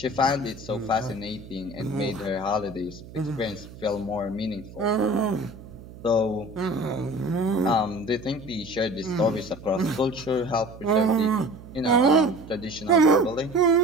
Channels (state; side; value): noise; right; hum, 17 dB below the sound